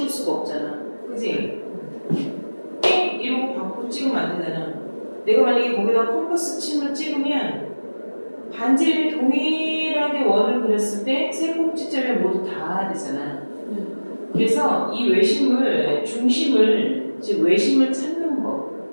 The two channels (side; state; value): both; inverted; correlation -1.00